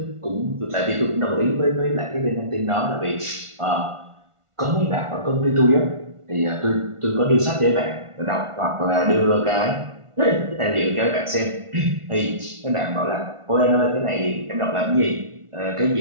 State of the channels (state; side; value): late; left; 1.4 ms